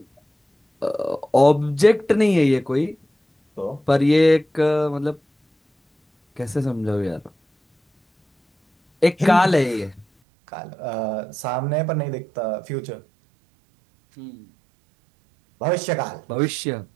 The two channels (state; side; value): drops out; left; at 10.1 s